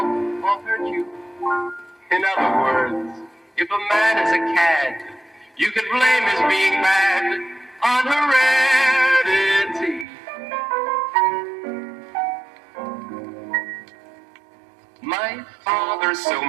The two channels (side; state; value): left; drops out; at 10.1 s